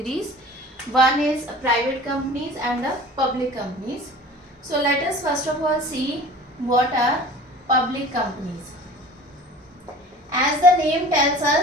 One is private companies and the public companies. So let us first of all see what are public companies. As the name tells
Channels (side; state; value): both; normal; correlation 0.43